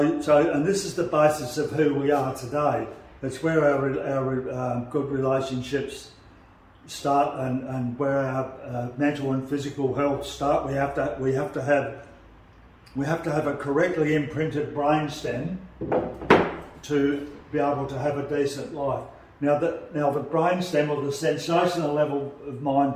this is the basis of who we are today. It's where our good relationships start, and where our mental and physical health start. We have to have a correctly imprinted brain stem to be able to have a decent life. Now the brain stem, or the sensational level of mind,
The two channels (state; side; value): identical; both; correlation 1.00